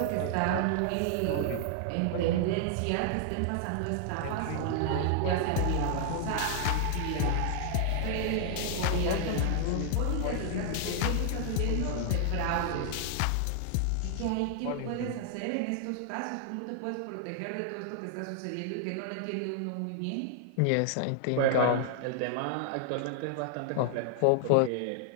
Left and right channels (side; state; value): both; different; correlation 0.00